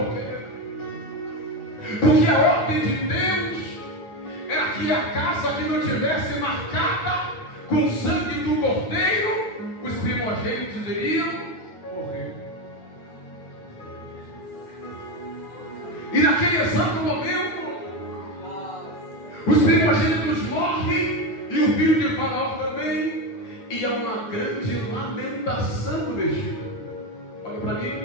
quê? Porque a ordem de Deus era que a casa que não tivesse marcada com o sangue do cordeiro, os primogênitos iriam morrer. E naquele exato momento, os primogênitos morrem e o filho de Faraó também, e há uma grande lamentação do Egito. Olha para mim,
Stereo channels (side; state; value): right; late; 9.2 ms